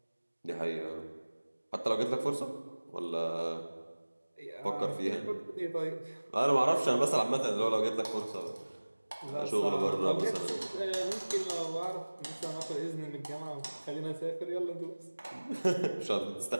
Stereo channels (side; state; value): both; inverted; correlation -1.00